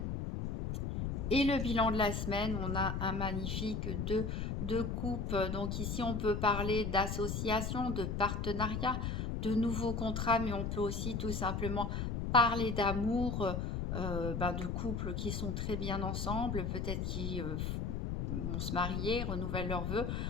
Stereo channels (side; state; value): left; noise; rumble, 2 dB below the sound